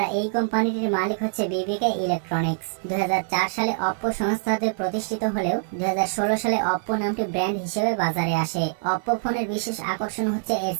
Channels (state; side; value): silent; left; 60 dB below the other